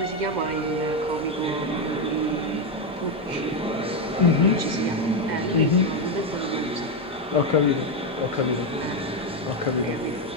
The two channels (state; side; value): normal; both; correlation 0.07